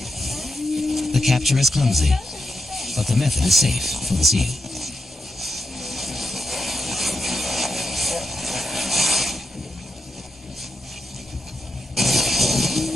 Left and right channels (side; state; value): both; normal; correlation 0.86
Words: The capture is clumsy, but the method is safe for the seal.